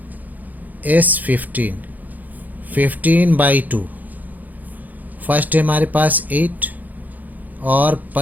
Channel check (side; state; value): left; late; 0.082 ms